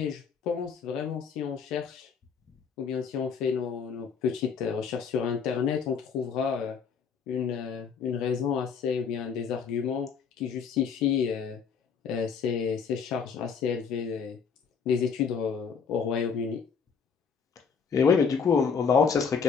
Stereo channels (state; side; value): quieter; right; 6.2 dB